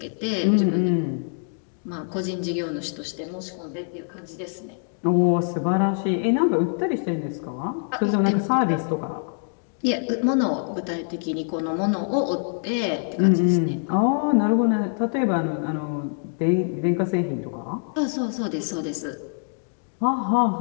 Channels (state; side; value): silent; right; 62 dB below the other